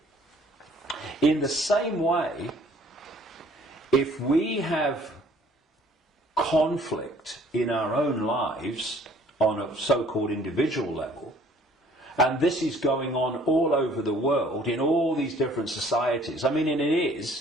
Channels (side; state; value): both; normal; correlation 0.57